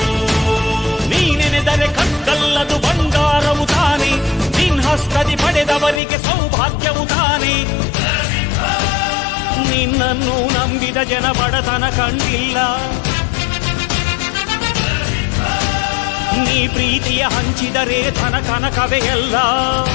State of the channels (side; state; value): right; drops out; at 6.0 s